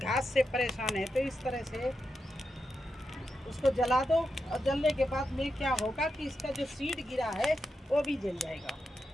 घास से परेशान है तो इस तरह से उसको जला दो। और जलने के बाद में क्या होगा कि इसका जो सीड गिरा है वो भी जल जाएगा।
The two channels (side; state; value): both; normal; correlation 0.87